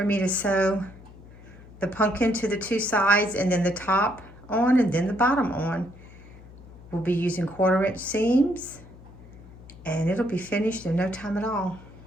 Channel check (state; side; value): noise; left; hum, 19 dB below the sound